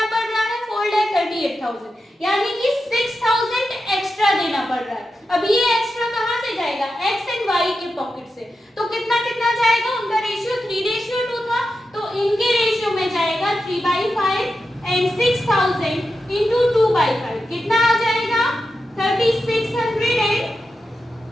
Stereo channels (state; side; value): normal; both; correlation 0.89